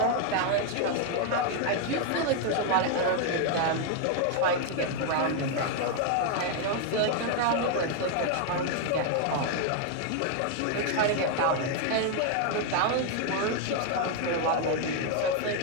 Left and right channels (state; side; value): different; both; correlation 0.00